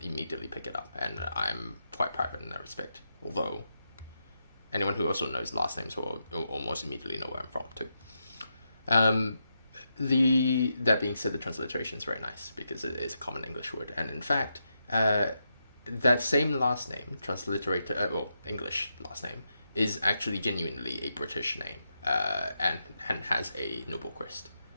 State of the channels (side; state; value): both; inverted; correlation -0.85